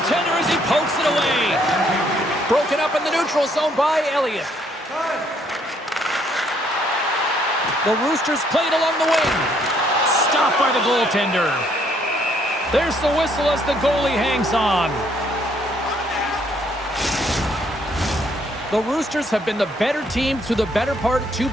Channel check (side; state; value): both; normal; correlation 0.68